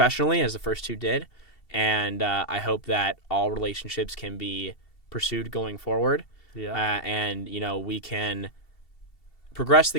as the first two did. And I hope that all relationships can be pursued going forward. Yeah. And, we can progress the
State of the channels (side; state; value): right; late; 2.7 ms